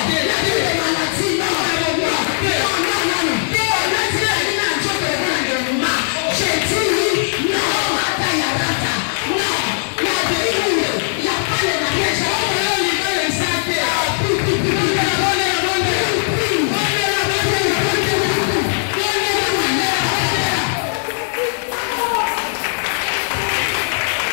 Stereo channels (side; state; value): right; silent; digital silence